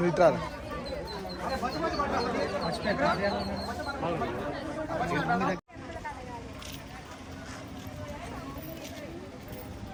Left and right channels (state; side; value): identical; both; correlation 1.00